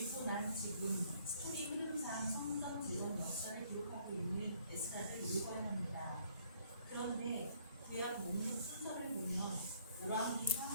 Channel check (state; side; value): inverted; both; correlation -0.63